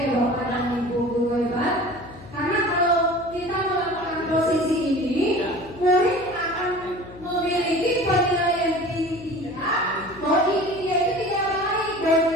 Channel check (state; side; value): noise; left; hum, 18 dB below the sound